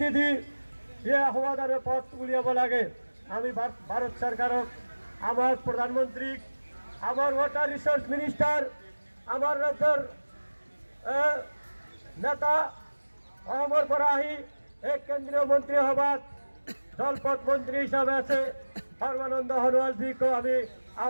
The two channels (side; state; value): both; inverted; correlation -1.00